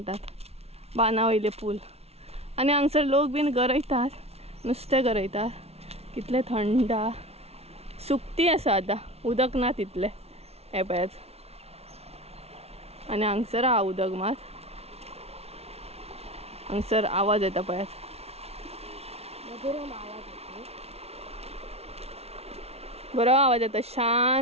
बाना वयले पूल. आनी हांगसर लोक बीन गरयतात नुस्तें गरयतात. कितले थंड. सुकती आसा आतां उदक ना तितलें. हे पळयात आनी हांगसर आहा उदक मात. हांगसर आवाज येता पळयात. बरो आवाज येता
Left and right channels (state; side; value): late; left; 0.30 ms